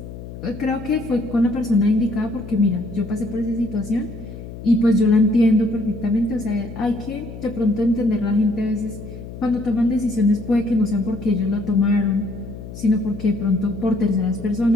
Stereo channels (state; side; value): noise; left; hum, 12 dB below the sound